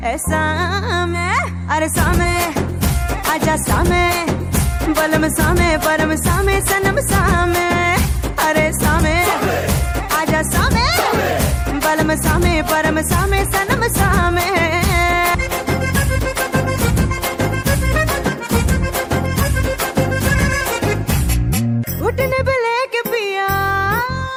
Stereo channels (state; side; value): identical; both; correlation 1.00